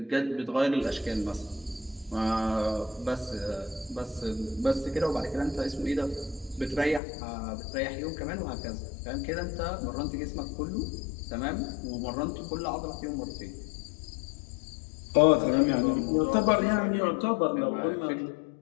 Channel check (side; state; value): right; drops out; at 7.0 s